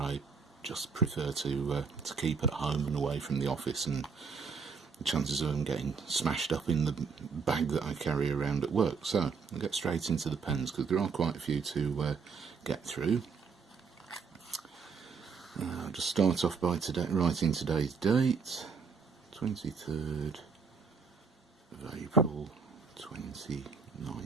just prefer to keep at home and away from the office, and the chances of them getting smashed up in the bag that I carry around at work. So I'll get straight into the pens because there are quite a few to get through. I'll just start off by writing today's date, 23rd of April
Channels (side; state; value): left; quieter; 5.4 dB